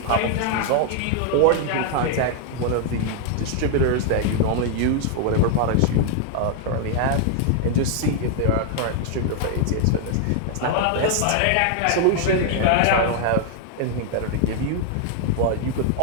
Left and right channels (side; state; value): both; different; correlation 0.00